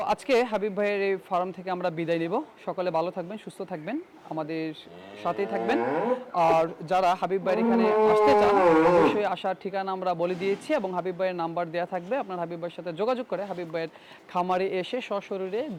আজকে হাবিব ভাইয়ের এই ফার্ম থেকে আমরা বিদায় নিব। সকালে ভালো থাকবেন, সুস্থ থাকবেন, আমাদের সাথেই থাকবেন। আর যারা হাবিব ভাইয়ের এখানে আসতে চান, অবশ্যই আসার ঠিকানা আমরা বলে দিয়েছি এবং হাবিব ভাইয়ের নাম্বার দেওয়া থাকবে। আপনার হাবিব ভাইয়ের সাথে যোগাযোগ করে হাবিব ভাইয়ের খামারে এসে সশরীরে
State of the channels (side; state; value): both; identical; correlation 1.00